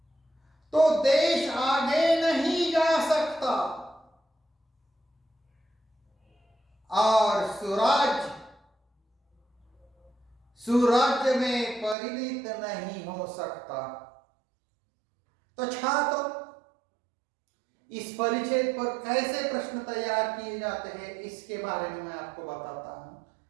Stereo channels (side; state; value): left; drops out; at 12.0 s